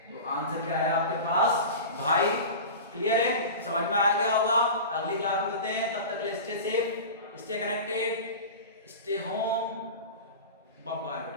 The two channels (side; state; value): both; inverted; correlation -0.31